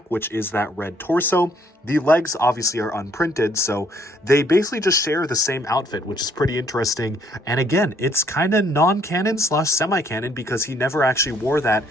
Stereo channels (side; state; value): both; normal; correlation 0.65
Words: which is that red torso. The legs obviously are unprinted, so they basically just share the same outfit, which is pretty interesting. And again, it's kind of non-canon / semi-canon because he never actually wore that